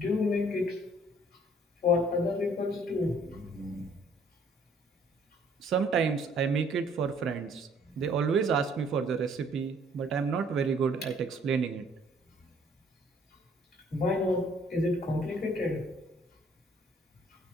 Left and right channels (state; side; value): normal; both; correlation 0.60